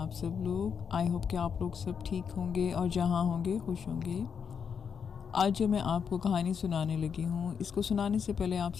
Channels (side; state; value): right; quieter; 6.8 dB